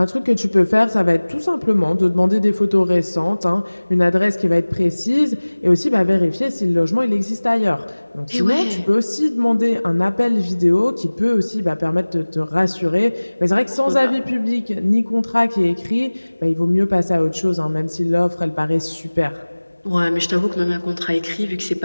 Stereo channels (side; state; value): both; inverted; correlation -1.00